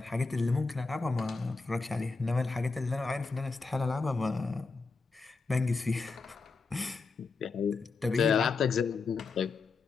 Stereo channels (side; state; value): right; quieter; 4.3 dB